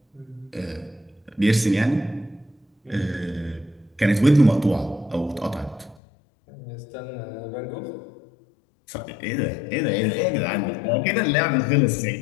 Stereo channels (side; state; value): right; drops out; at 6.0 s